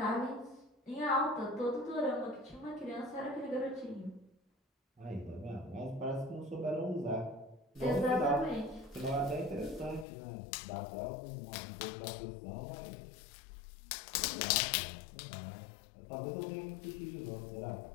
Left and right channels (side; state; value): right; drops out; at 10.1 s